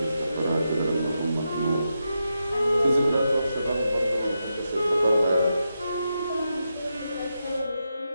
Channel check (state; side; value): inverted; both; correlation -0.86